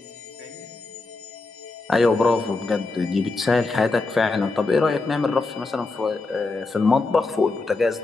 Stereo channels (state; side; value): quieter; right; 3.6 dB